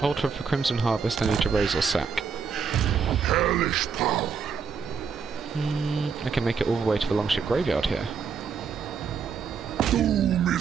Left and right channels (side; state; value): left; quieter; 6.0 dB